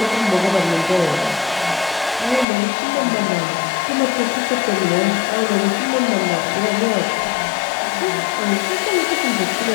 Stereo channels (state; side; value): drops out; right; at 2.5 s